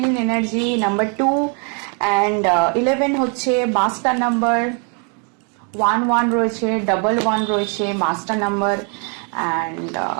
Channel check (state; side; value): quieter; left; 38.0 dB